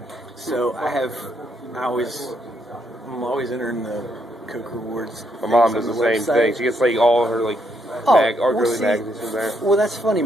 so I'm always entering the Coke Rewards. My mom does the same thing. She gets like all her like girly magazines in there. Well, that's funny.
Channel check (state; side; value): normal; both; correlation 0.75